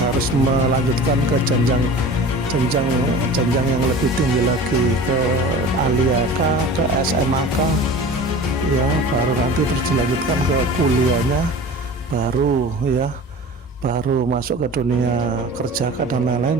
harus melanjutkan ke jenjang yang lebih tinggi lagi, ke Aliaka, ke SMAK ya, baru nanti terus dilanjutkan ke kuliahnya, baru ya, baru masuk ke dunia kerja dan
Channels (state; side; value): normal; both; correlation 0.38